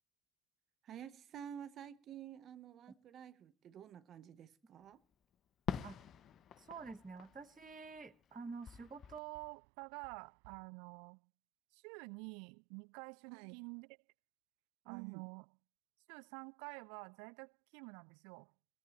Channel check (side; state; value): left; drops out; at 9.2 s